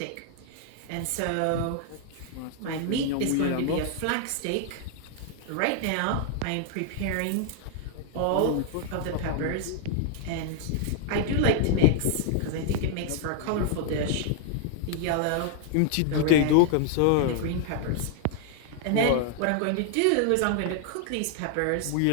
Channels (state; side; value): different; both; correlation 0.00